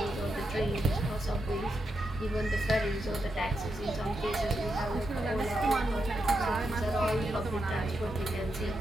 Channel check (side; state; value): both; normal; correlation 0.85